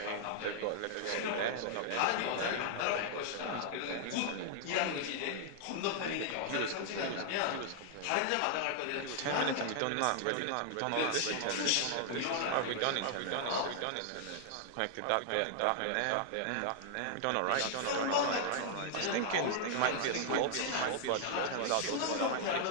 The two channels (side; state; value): both; different; correlation 0.00